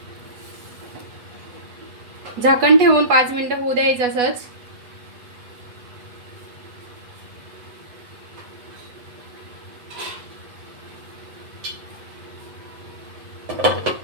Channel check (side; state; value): left; late; 8.2 ms